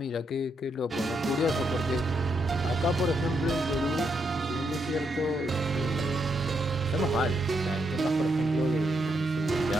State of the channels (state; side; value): normal; both; correlation 0.79